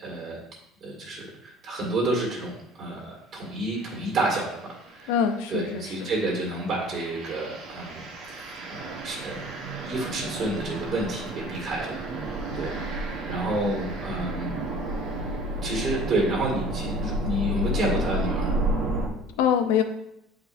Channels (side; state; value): both; normal; correlation 0.46